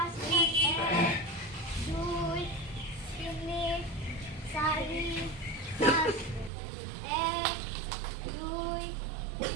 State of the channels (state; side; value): drops out; left; at 6.5 s